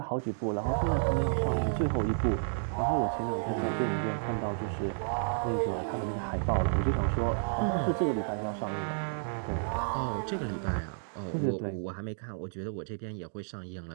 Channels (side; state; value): left; silent; digital silence